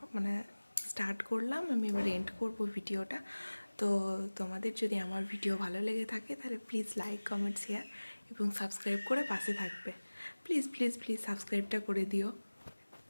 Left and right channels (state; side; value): inverted; both; correlation -1.00